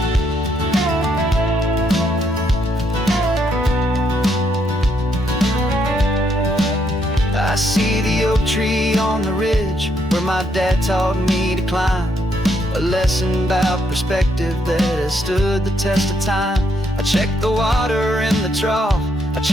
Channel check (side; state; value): both; normal; correlation 0.74